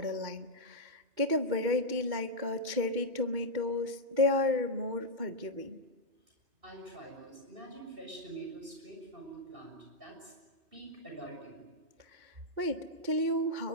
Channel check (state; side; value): late; left; 2.2 ms